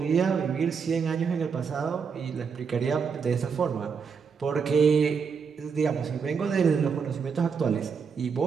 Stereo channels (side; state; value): left; quieter; 6.0 dB